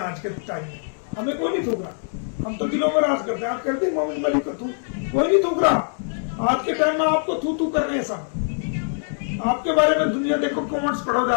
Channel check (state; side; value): silent; right; 63 dB below the other